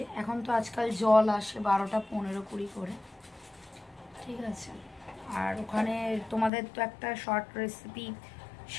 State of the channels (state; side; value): drops out; right; at 6.5 s